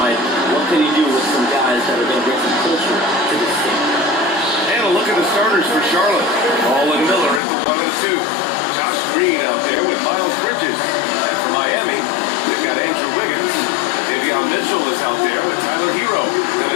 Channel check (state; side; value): drops out; right; at 7.4 s